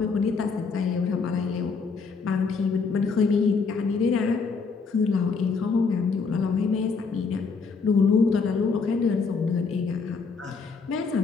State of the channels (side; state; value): right; quieter; 4.9 dB